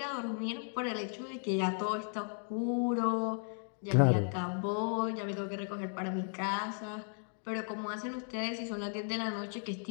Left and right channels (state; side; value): silent; right; 54 dB below the other